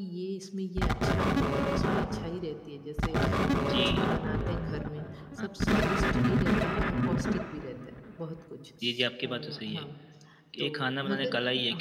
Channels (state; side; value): identical; both; correlation 1.00